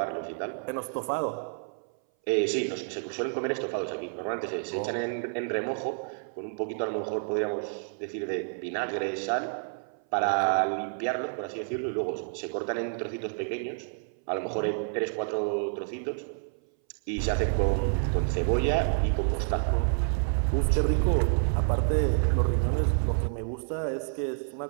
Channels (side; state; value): left; silent; 58 dB below the other